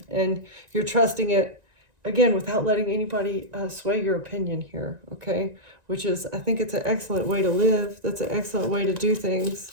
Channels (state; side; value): late; left; 1.9 ms